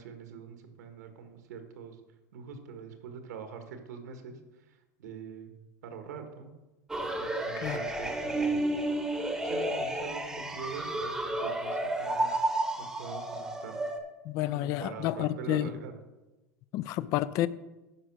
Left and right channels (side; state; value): both; normal; correlation 0.52